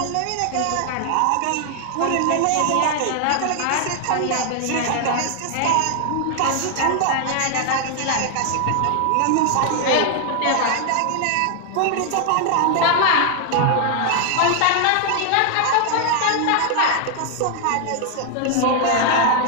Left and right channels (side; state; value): both; different; correlation 0.00